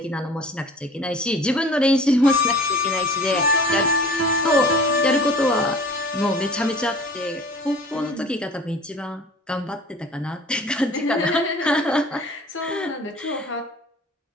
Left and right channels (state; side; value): normal; both; correlation 0.45